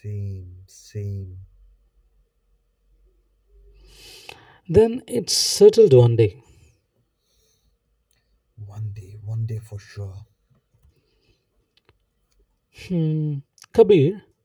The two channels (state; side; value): identical; both; correlation 1.00